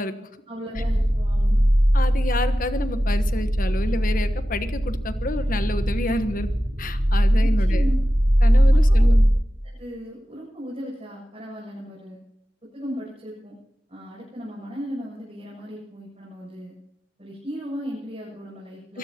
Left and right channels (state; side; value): normal; both; correlation 0.94